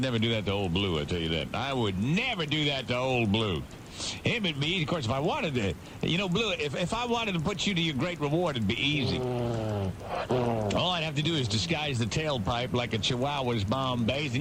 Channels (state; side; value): identical; both; correlation 1.00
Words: never do that to old Blue, I tell you that. I would never do that to old Blue. Him and me, of course, if I wanted to, Blue, if I wanted to put you to your great reward, it'd be easy. All I'd have to do is disguise the tailpipe like a Chihuahua's Bombays,